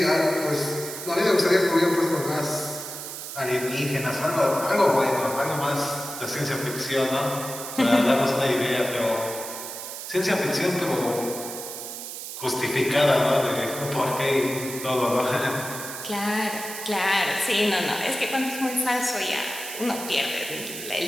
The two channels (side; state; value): right; noise; hiss, 9 dB below the sound